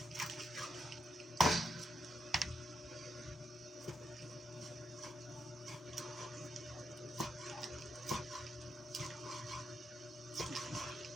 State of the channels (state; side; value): normal; both; correlation 0.82